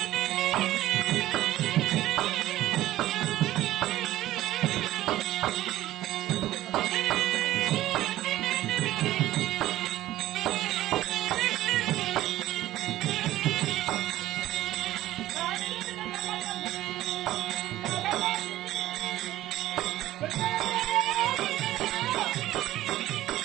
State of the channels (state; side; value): quieter; left; 14.9 dB